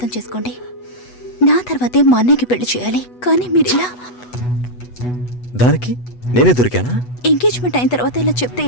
చేసుకోండి. నా తర్వాతే మా అన్నయ్యకి పెళ్లి చేయాలి, కానీ మీరు ఇలా. దానికి నేనే దొరికానా? ఎంగేజ్మెంట్ అయిన తర్వాత ఇలా చెప్తే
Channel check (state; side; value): late; right; 8.1 ms